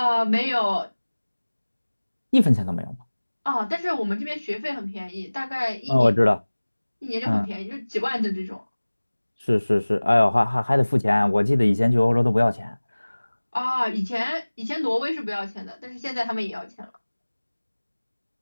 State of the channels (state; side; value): inverted; both; correlation -1.00